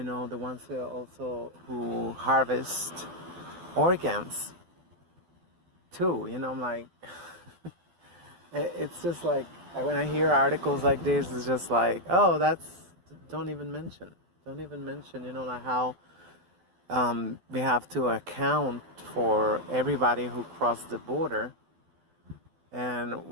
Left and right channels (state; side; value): late; left; 12 ms